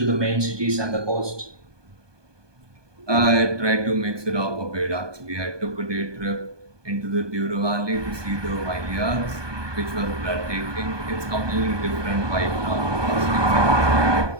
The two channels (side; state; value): left; late; 1.2 ms